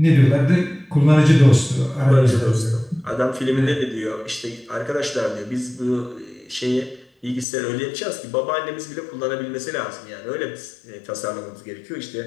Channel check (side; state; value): right; drops out; at 7.5 s